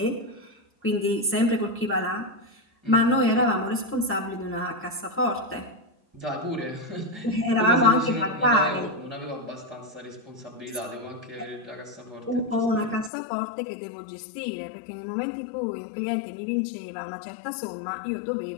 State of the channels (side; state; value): right; drops out; at 13.1 s